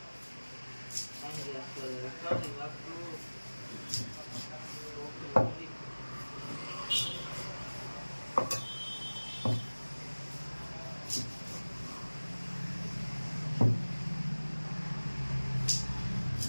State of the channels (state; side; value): inverted; both; correlation -1.00